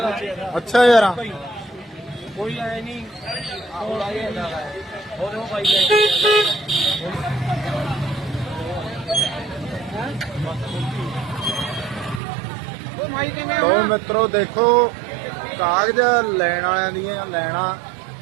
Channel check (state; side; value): drops out; left; at 12.2 s